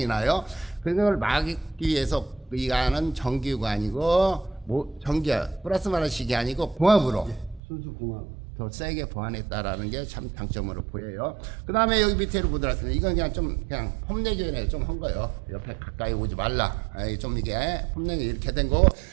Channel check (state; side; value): drops out; left; at 7.6 s